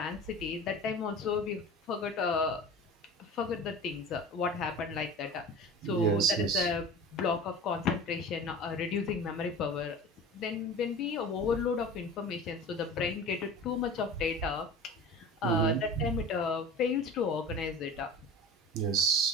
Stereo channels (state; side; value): normal; both; correlation 0.37